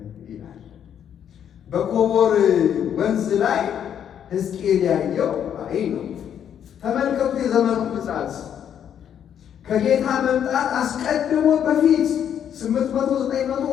ይላል። በኮቦር ወንዝ ላይ ሕዝቅኤል ያየው ራእይ ነው። ተመልከቱ የዘመኑ ግጻት ከጌታ መምጣት አስቀድሞ በፊት 800-900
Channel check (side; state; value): right; quieter; 9.1 dB